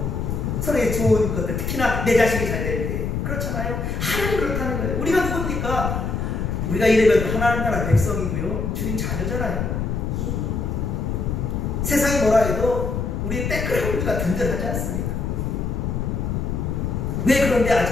서로의 좋은 것들, 특히나 내 자식이 잘 될 때 그렇잖아요. 하나님 그렇다는 거예요. 우리가 누굽니까? 우리가 이래봬도 하나님 나라 백성이고요 주님 자녀잖아요. 세상이 뭐라 해도 우리의 백그라운드가 든든하지 않습니까? 왜 그런데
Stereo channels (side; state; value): left; noise; rumble, 1 dB below the sound